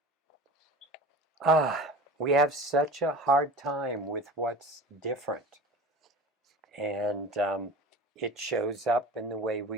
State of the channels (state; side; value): normal; both; correlation 0.36